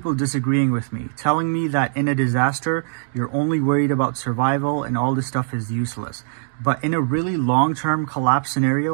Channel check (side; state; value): left; silent; digital silence